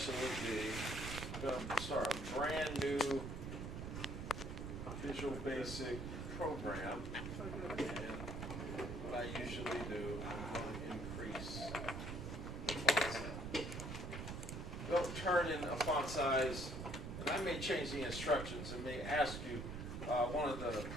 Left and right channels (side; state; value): right; noise; rumble, 6 dB below the sound